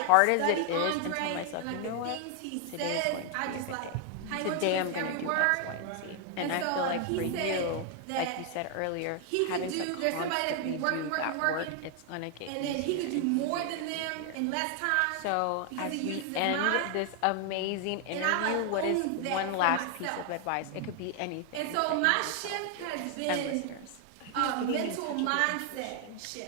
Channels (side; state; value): both; different; correlation 0.00